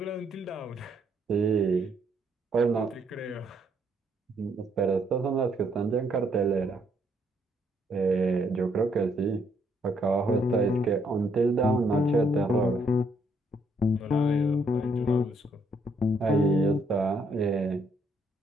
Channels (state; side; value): normal; both; correlation 0.71